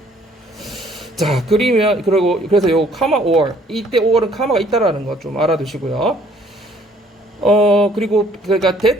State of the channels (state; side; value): normal; both; correlation 0.60